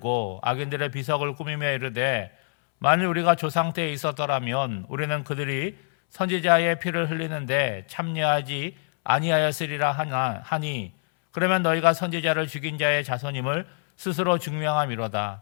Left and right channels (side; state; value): right; silent; 61 dB below the other